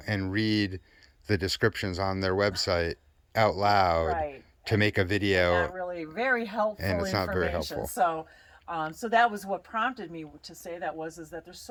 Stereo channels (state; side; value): identical; both; correlation 1.00